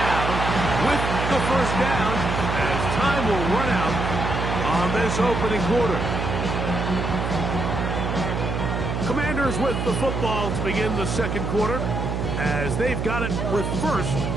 with the first down as time will run out on this opening quarter. Commanders with the football to begin the second quarter as they've got it with first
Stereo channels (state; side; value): noise; right; hum, 2 dB below the sound